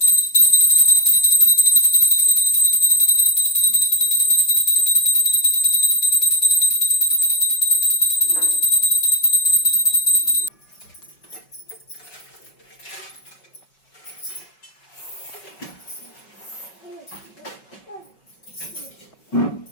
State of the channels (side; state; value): right; late; 5.3 ms